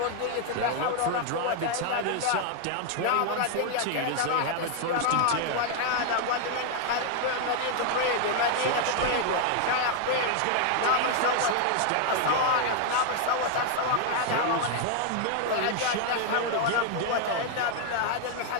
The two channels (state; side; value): different; both; correlation 0.00